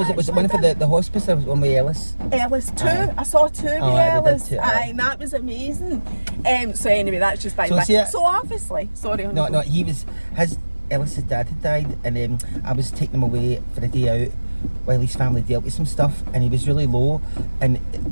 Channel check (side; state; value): both; inverted; correlation -1.00